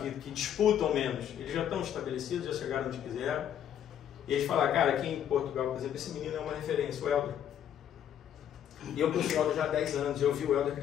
disputam menos. Eles já estão estabelecidos, já chegaram onde quiseram. E eles falam, cara, aqui em Portugal, por exemplo, esse menino é uma referência, o Helder. E eu conheci o Helder já há 10 anos, eu vi o Helder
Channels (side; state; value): right; quieter; 9.8 dB